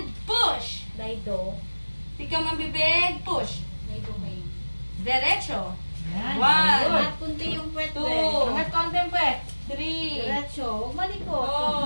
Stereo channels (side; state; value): both; inverted; correlation -1.00